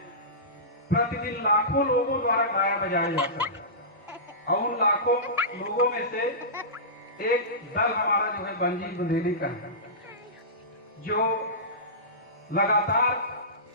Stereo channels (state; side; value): normal; both; correlation -0.20